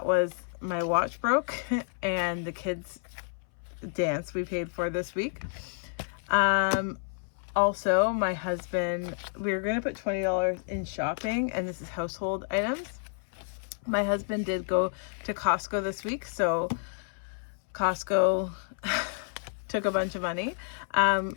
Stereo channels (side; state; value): right; silent; 58 dB below the other